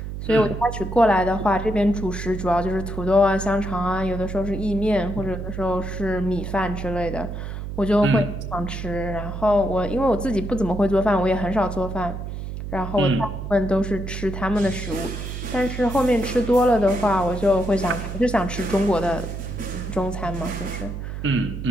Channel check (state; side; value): noise; right; hum, 7 dB below the sound